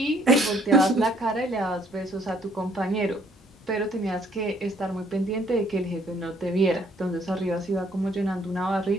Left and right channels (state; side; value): normal; both; correlation 0.64